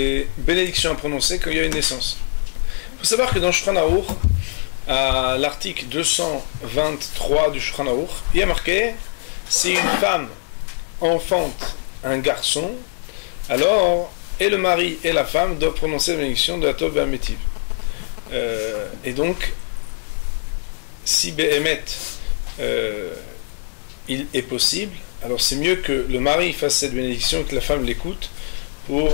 bénédictions à prononcer quand il y a une naissance. Il faut savoir que dans Shulchan Aruch, à l'article 223 du Shulchan Aruch, il y a marqué si une femme enfante un garçon, alors et le mari et la femme doivent prononcer la bénédiction de la Tov Ve'Ametiv. Et donc, si Be'emet il est possible, alors c'est mieux que le mari fasse cette bénédiction et que la femme l'écoute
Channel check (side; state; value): right; silent; 63 dB below the other